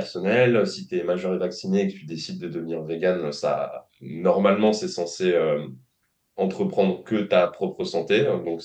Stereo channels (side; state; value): both; identical; correlation 1.00